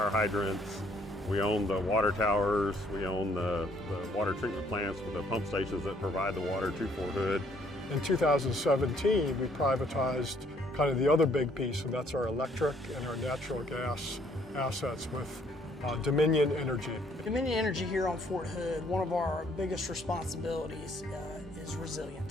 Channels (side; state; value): both; normal; correlation 0.65